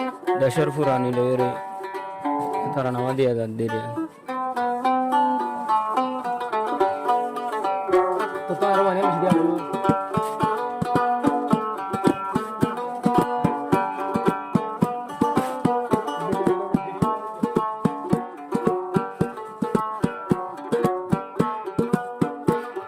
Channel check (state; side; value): identical; both; correlation 1.00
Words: দেশের পুরানি লইরে তারা নামা দিয়া যান দিরে তো তার মানে দিয়া